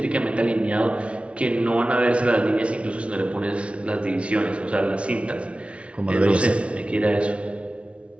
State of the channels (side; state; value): left; late; 0.061 ms